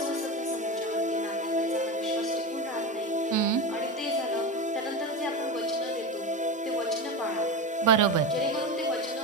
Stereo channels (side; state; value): both; normal; correlation 0.21